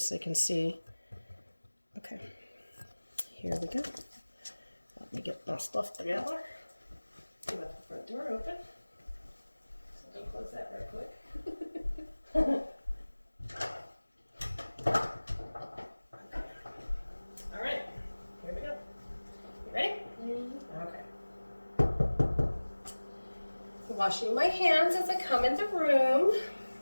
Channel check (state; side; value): inverted; both; correlation -1.00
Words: they can see. Okay. Here we go. Let me get my stuff together. Let the front door open. So don't close that right quick. All right, here we go. You ready? Okay. Washing my hands as I come in the room.